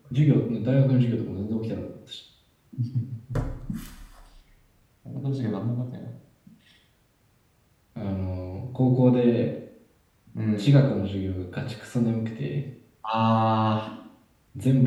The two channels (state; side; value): identical; both; correlation 1.00